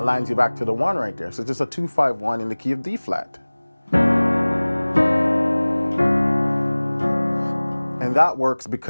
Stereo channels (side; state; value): both; inverted; correlation -1.00